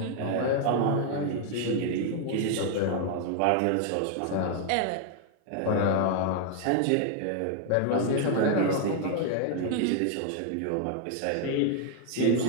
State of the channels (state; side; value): different; both; correlation 0.00